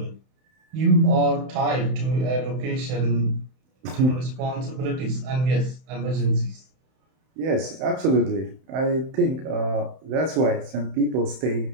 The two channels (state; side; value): late; left; 31 ms